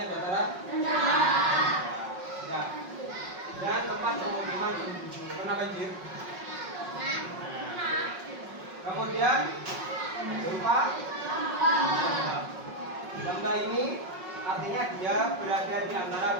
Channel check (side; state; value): left; late; 5.4 ms